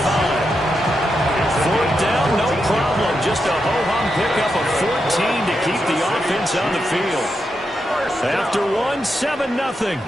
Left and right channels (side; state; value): both; normal; correlation 0.85